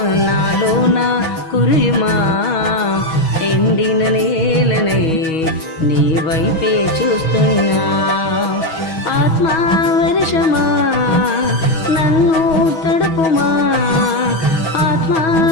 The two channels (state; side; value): late; right; 6.2 ms